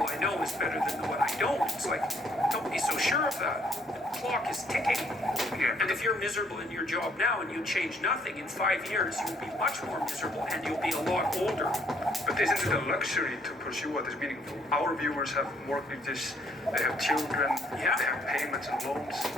I know is better than the one I don't. It's like, don't be so sure of that. The clock is ticking. And if you're miserable in your job now and you change nothing, in 5 years you'll be much more miserable and you'll be a lot older. But isn't it a luxury to pursue what is meaningful? Our viewers have mortgages, they have children, they have payments and loans.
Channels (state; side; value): normal; both; correlation 0.66